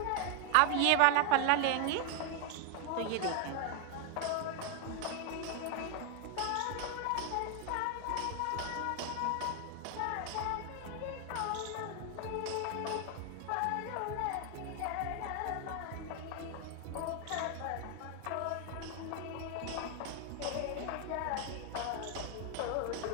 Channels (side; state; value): both; different; correlation 0.01